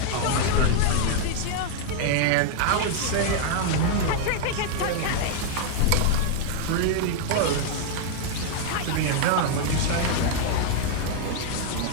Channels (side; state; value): both; different; correlation 0.00